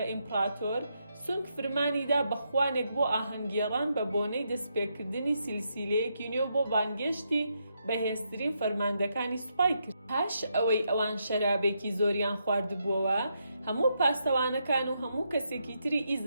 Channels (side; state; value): both; inverted; correlation -0.80